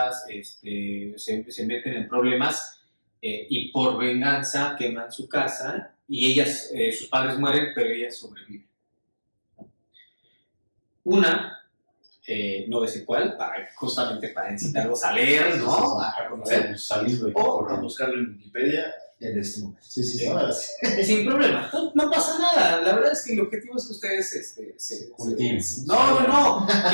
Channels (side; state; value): both; inverted; correlation -1.00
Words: se meten en problemas, y por venganza queman su casa, y ellas, sus padres mueren, pero ellas sobreviven. Una, no sé cuál, justamente para incitarlos a leer, ¿no? A conocer. O a buscarlo en Wikipedia en este momento. Sí. Sin problema, no pasa nada. La verdad es que el objetivo es que ustedes se cultiven. No.